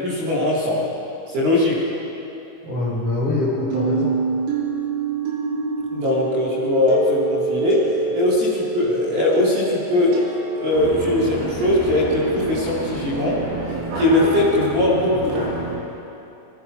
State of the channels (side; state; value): left; late; 25 ms